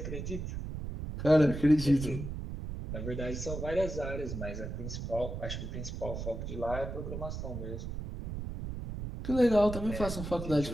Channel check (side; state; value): right; noise; rumble, 6 dB below the sound